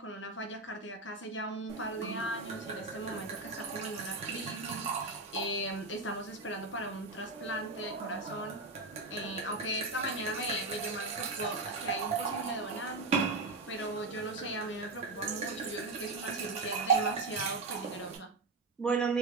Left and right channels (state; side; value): quieter; left; 3.4 dB